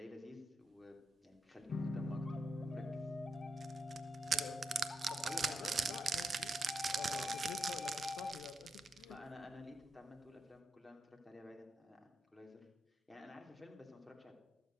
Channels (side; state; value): both; normal; correlation 0.85